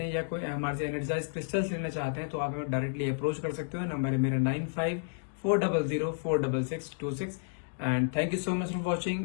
हैं या कोई हमारे से एनर्जाइज क्रिस्टल्स लेना चाहते हैं तो आप हमें डायरेक्टली अप्रोच कर सकते हो। नंबर है मेरा 9540046626। And thank you so much for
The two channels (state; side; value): silent; right; digital silence